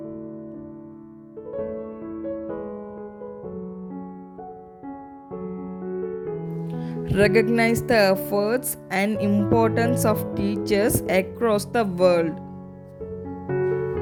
Recognize the efforts and importance of teachers across the world.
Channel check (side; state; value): both; identical; correlation 1.00